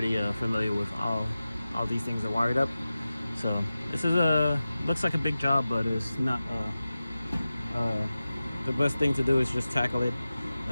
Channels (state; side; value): inverted; both; correlation -0.95